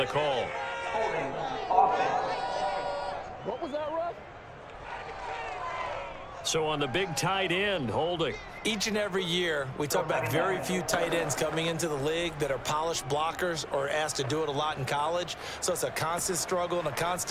call. What was that, Russ? So on the big tight end, holding. Each and every year, we talk about very few tight ends coming into the league that are polished blockers or asked to do it a lot in college. So it's a constant struggle and a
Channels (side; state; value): both; identical; correlation 1.00